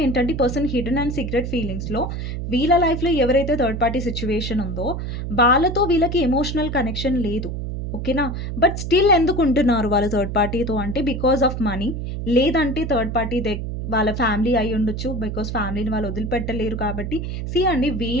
ఏంటంటే ఈ పర్సన్ హిడెన్ అండ్ సీక్రెట్ ఫీలింగ్స్‌లో వీళ్ళ లైఫ్‌లో ఎవరైతే థర్డ్ పార్టీ సిట్యుయేషన్ ఉందో, వాళ్ళతో వీళ్ళకి ఎమోషనల్ కనెక్షన్ లేదు. ఓకేనా? బట్ స్టిల్ ఎందుకుంటున్నారు వాళ్ళు థర్డ్ పార్టీతో అంటే బికాజ్ ఆఫ్ మనీ. లేదంటే థర్డ్ పార్టీ వాళ్ళ ఫ్యామిలీ అయ్యుండొచ్చు. బికాజ్ ఫ్యామిలీని వాళ్ళు వదిలిపెట్టలేరు కాబట్టి అండి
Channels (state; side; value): noise; right; hum, 4 dB below the sound